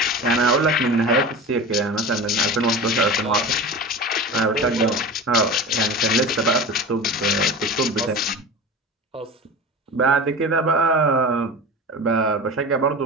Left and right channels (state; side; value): normal; both; correlation 0.32